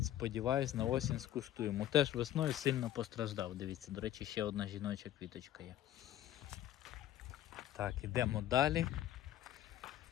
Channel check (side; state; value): right; quieter; 12.5 dB